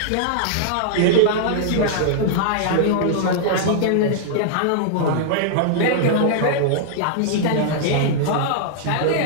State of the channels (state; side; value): different; both; correlation -0.01